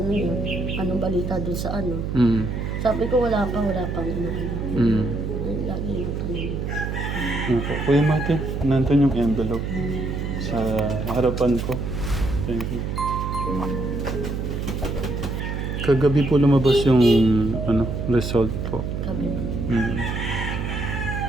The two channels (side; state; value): right; noise; hum, 3 dB below the sound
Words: yun, anong balita dun sa ano. Mm. Sabi ko wala pang ano. Mm. Ayun, lagi yung tanong. Opo. Kuya Martin, nandun yung envelope sa harapan ko. Thank you. Kagabi po lumabas yung result po. Sabi ko. Mm.